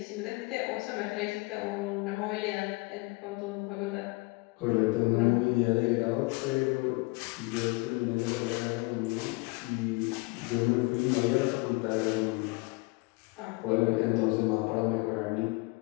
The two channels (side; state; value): right; quieter; 26.0 dB